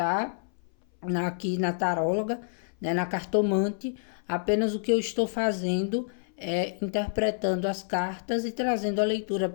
Aqui na taróloga, né, na cartomante, apenas o que eu estou fazendo é interpretando as cartas e trazendo a leitura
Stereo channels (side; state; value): right; silent; 58 dB below the other